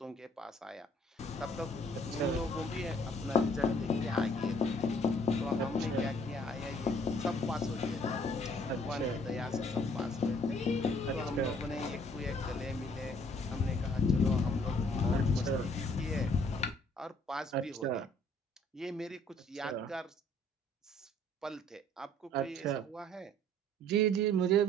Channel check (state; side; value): normal; both; correlation 0.59